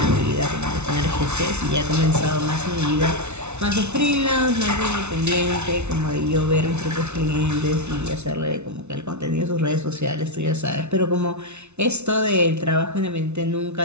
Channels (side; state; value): left; late; 0.81 ms